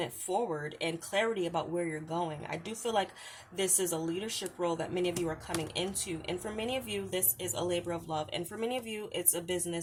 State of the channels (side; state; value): both; identical; correlation 1.00